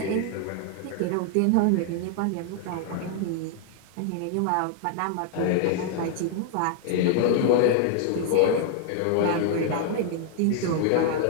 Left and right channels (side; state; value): both; different; correlation 0.00